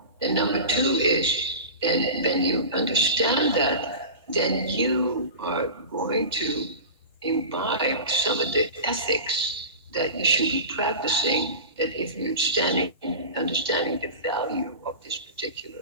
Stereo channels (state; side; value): inverted; both; correlation -0.31